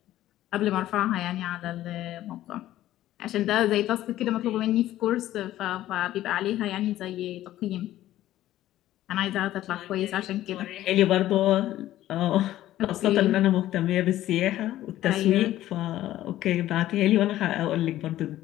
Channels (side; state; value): right; quieter; 14.0 dB